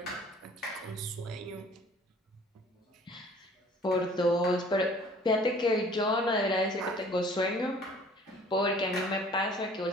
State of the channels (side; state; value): both; normal; correlation 0.52